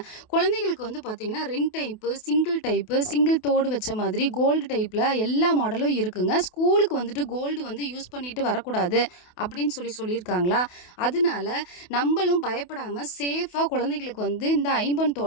குழந்தைகளுக்கு வந்து பார்த்தீங்கன்னா ரிங் டைப்பு, சிங்கிள் தோடு வச்ச மாதிரி கோல்டு டைப்பில் எல்லா மாடலும் இருக்குங்க. ஸ்கூலுக்கு வந்துட்டு கோல்டு வந்து யூஸ் பண்ணிட்டு வரக்கூடாது அப்படின்னு சொல்லியிருக்காங்களா, அதனால நம்மளும் பயப்படாமல் சேஃபாக குழந்தைகளுக்கு வந்து இந்த ஐம்பொன்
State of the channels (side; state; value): right; late; 28 ms